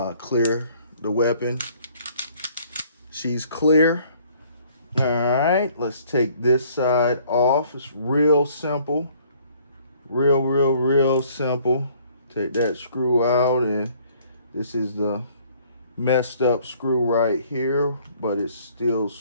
Clear the weapon. She's clear. All right, let's take this side off. It's real simple. Real simple. Take that screw out, and this is the messed up screw right here, but it's still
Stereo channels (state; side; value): inverted; both; correlation -0.59